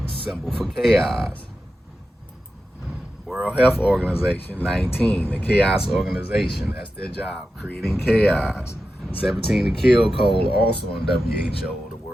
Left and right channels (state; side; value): normal; both; correlation 0.91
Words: Symbol for chaos. World Health Organization 19, the chaos organization. That's their job, creating chaos. 17, the kill code, also on WHO, the